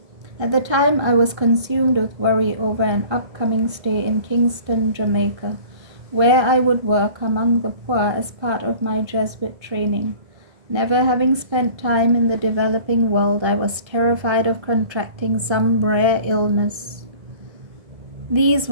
At the time, I was consumed with worry over an upcoming stay in Kingston, Jamaica, where I would work among the poor as part of my Jesuit training. Never having spent time in the developing world, I was terrified of contracting some rare illness. These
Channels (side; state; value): left; late; 1.3 ms